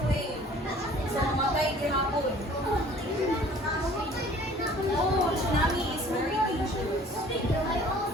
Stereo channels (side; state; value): both; normal; correlation 0.51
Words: wave. So, mamatay gihapon. Oh, tsunami is very dangerous.